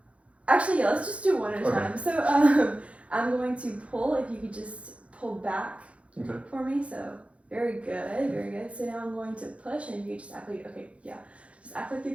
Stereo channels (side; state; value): left; late; 0.063 ms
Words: Actually, yeah, let's just do one at a Okay. time. So, I'm going to pull. If you could just pull back Okay. for me. So very good, very good. So now I'm going to push, and you just act like just act like you're